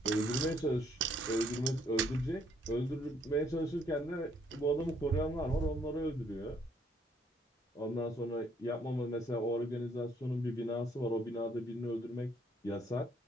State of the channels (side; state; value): both; normal; correlation 0.67